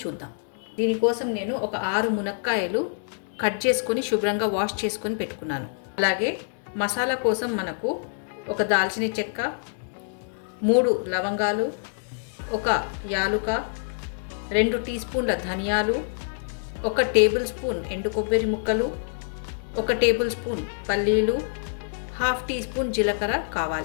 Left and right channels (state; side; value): silent; right; digital silence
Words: చూద్దాం. దీనికోసం నేను ఒక 6 మునక్కాయలు కట్ చేసుకొని శుభ్రంగా వాష్ చేసుకొని పెట్టుకున్నాను. అలాగే మసాలా కోసం మనకు ఒక దాల్చిన చెక్క, 3 లవంగాలు, ఒక యాలుక, 2 టీ స్పూన్ల ధనియాలు, 1 టేబుల్ స్పూన్ ఎండు కొబ్బరి ముక్కలు, 1 టేబుల్ స్పూన్ పల్లీలు, 1/2 టీ స్పూన్ జీలకర్ర